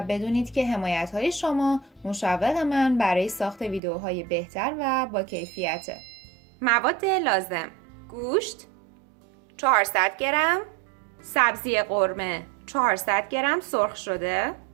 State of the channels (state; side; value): drops out; left; at 3.8 s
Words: بدونید که حمایت‌های شما مشوق من برای ساخت ویدیوهای بهتر و با کیفیته. مواد لازم: گوشت 400 گرم، سبزی قرمه 400 گرم سرخ شده،